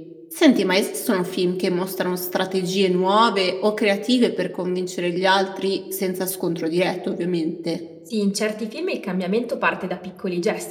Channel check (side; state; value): both; identical; correlation 1.00